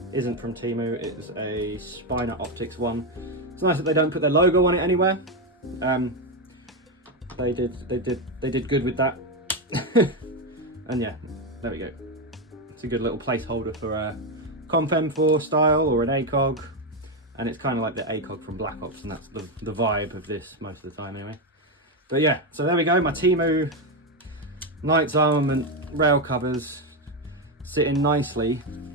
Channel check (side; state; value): both; normal; correlation 0.08